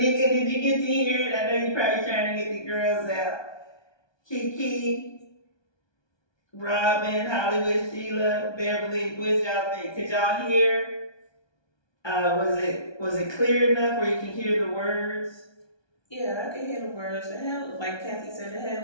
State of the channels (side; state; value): right; late; 1.2 ms